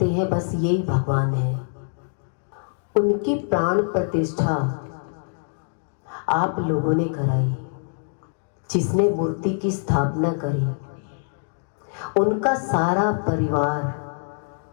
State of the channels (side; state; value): right; silent; digital silence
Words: हैं बस ये भगवान है। उनकी प्राण प्रतिष्ठा आप लोगों ने कराई। जिसने मूर्ति की स्थापना करी उनका सारा परिवार